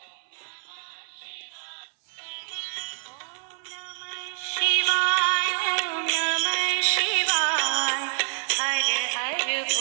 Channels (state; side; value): silent; left; 60 dB below the other